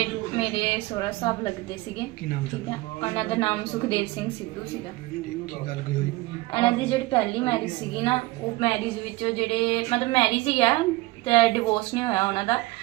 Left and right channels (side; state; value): left; quieter; 20.6 dB